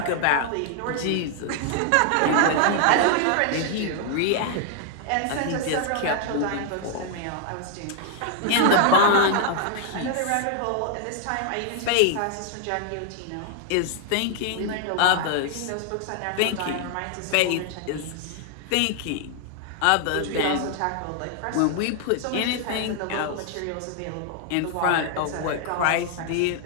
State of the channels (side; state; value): both; different; correlation 0.00